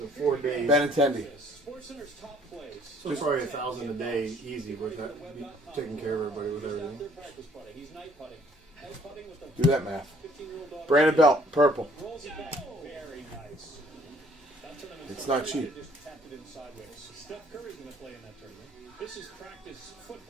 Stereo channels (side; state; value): both; normal; correlation 0.60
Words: 4 days. Benintendi. So it's probably $1,000 a day, easy, with that, taking care of everybody with everything. Do that math. Brandon Belt, purple. It's not cheap. Steph Curry's going to play in that tournament. This is practice